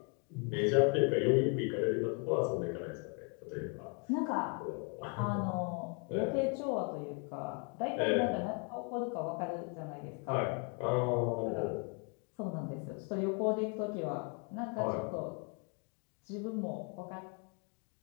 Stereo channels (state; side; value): quieter; right; 35.3 dB